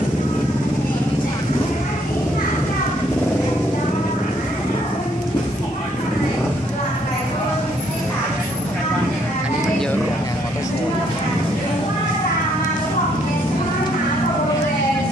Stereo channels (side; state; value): both; normal; correlation 0.69